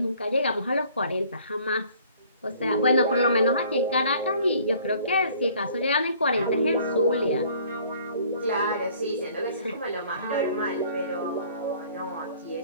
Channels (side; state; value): both; inverted; correlation -0.55